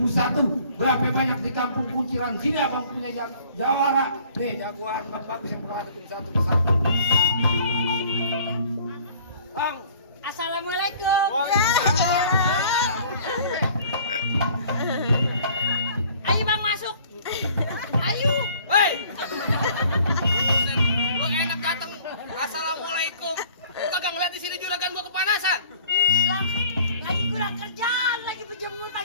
Berapa banyak di kampung kunciran sini abang punya jawara. Nih jagoan Bang Bagus yang bakal hadapin satu persatu. Bang. Assalamualaikum. Ayo Bang masuk. Ayo. Hei! Lu enak dateng. Assalamualaikum. Lu kagak ngeliat di sini juragan gua kepanasan. Lah, lagi kurang kerjaan, lagi berjemur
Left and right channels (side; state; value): both; inverted; correlation -0.53